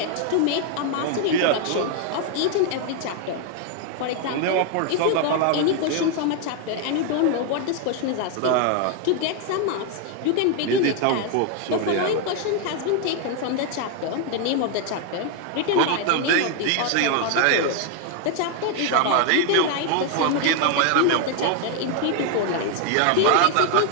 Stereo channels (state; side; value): different; both; correlation 0.00